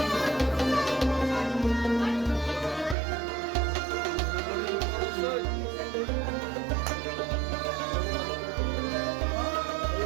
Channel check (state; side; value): drops out; left; at 3.0 s